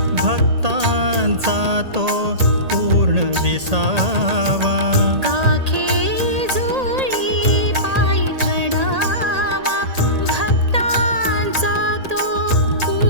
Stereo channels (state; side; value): late; left; 1.8 ms